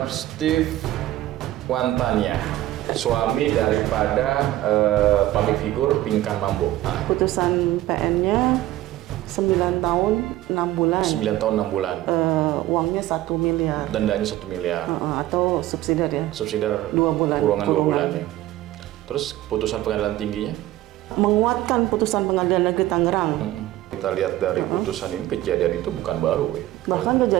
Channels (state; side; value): quieter; left; 15.2 dB